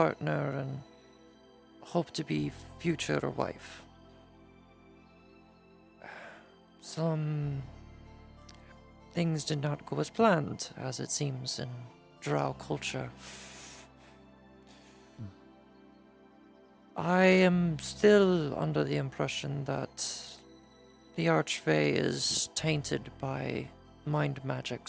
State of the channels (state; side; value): identical; both; correlation 1.00